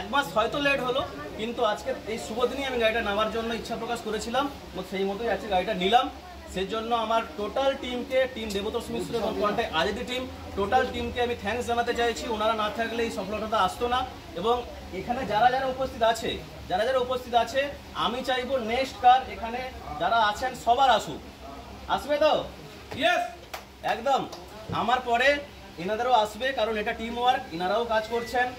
মাস হয়তো লেট হলো, কিন্তু আজকে এই শুভ দিনেই আমি গাড়িটা নেওয়ার জন্য ইচ্ছা প্রকাশ করেছিলাম, এবং সেই মতোই আজকে গাড়িটা নিলাম। সেই জন্য আমার টোটাল টিমকে, টিম দেবতোষ মিশ্র এবং কন্টাক্ট আজাদি টিম, টোটাল টিমকে আমি থ্যাঙ্কস জানাতে চাইছি। ওনারা না থাকলে এই সফলতাটা আসতো না। এবং এখানে যারা যারা উপস্থিত আছে, আমি চাইবো নেক্সট কার এখানে যারা আছেন সবার আসুক। আসবে তো? ইয়েস, একদম। আমার পরে এনাদেরও আসবে, কারণ এটা টিম ওয়ার্ক, এনারাও কাজ করছেন,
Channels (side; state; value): both; identical; correlation 1.00